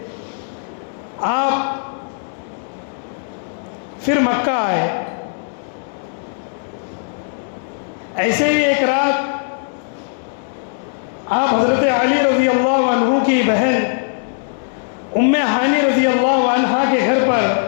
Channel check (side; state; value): right; silent; digital silence